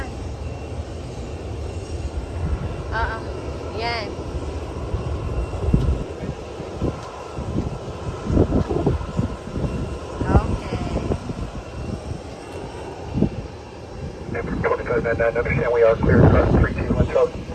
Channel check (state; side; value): identical; both; correlation 1.00